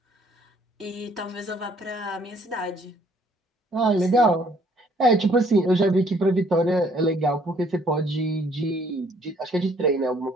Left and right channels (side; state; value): both; normal; correlation 0.63